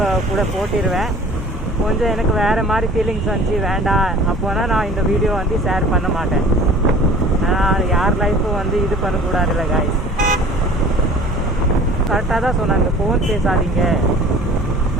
கூட போட்டிடுவேன். கொஞ்சம் எனக்கு வேறு மாதிரி ஃபீலிங்ஸ் வந்துச்சு, வேண்டாம் அப்போனா நான் இந்த வீடியோ வந்து ஷேர் பண்ண மாட்டேன். ஆனால் யார் லைஃப்பும் வந்து இது பண்ணக்கூடாதுல்ல காய்ஸ். கரெக்டாக தான் சொன்னாங்க, ஃபோன் பேசாதீங்க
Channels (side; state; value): both; normal; correlation 0.47